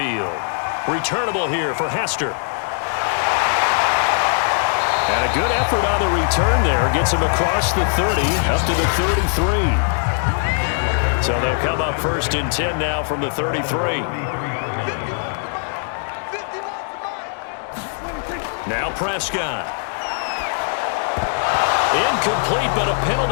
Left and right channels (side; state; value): right; silent; 65 dB below the other